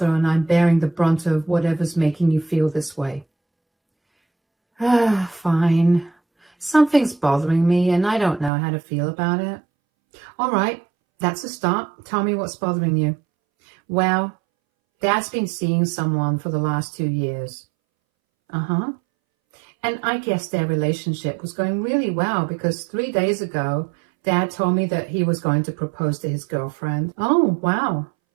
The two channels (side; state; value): left; drops out; at 8.5 s